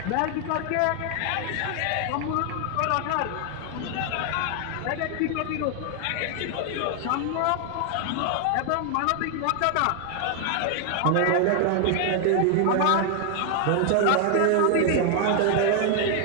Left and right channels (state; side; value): different; both; correlation 0.00